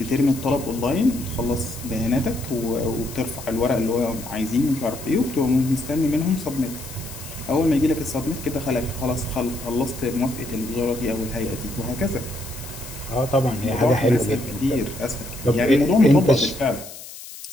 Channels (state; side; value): noise; left; hiss, 14 dB below the sound